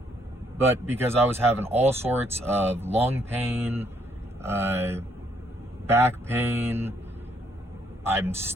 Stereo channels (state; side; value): normal; both; correlation 0.70